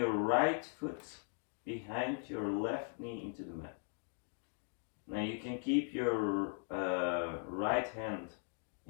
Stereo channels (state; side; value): silent; right; 52 dB below the other